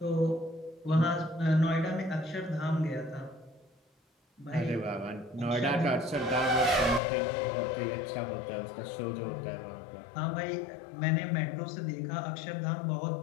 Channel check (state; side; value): drops out; right; at 7.0 s